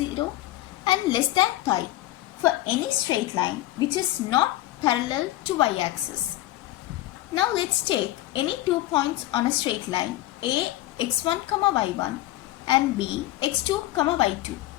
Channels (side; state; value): right; quieter; 15.9 dB